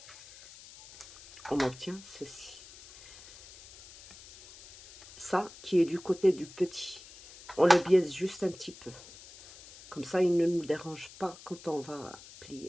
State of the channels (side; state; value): left; noise; hiss, 19 dB below the sound